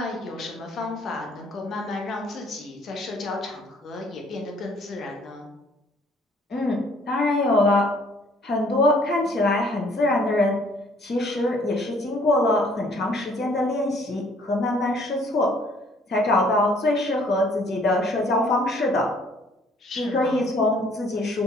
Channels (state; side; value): normal; both; correlation 0.60